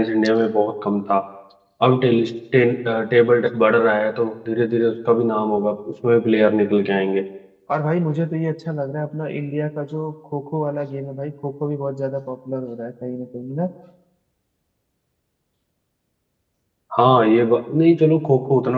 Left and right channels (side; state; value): both; identical; correlation 1.00